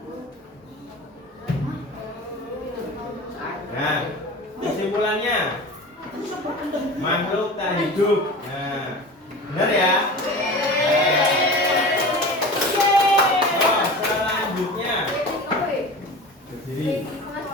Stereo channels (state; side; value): normal; both; correlation 0.34